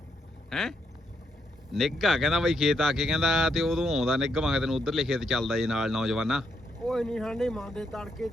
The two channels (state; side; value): normal; both; correlation 0.78